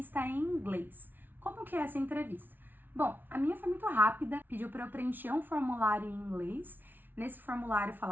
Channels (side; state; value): left; late; 0.091 ms